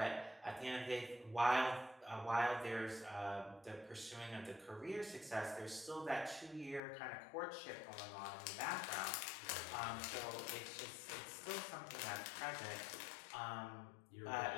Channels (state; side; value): drops out; right; at 6.8 s